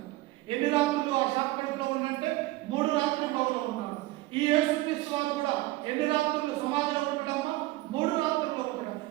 ఎన్ని రాత్రులు ఆ శాఖ కడుపులో ఉందంటే 3 రాత్రులు ఉన్నాడు. ఈ యేసు క్రీస్తు వారు కూడా ఎన్ని రాత్రులు సమాధిలో ఉంటాడమ్మా? 3 రాత్రుల్లో ఉంటాడు.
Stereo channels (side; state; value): left; quieter; 18.7 dB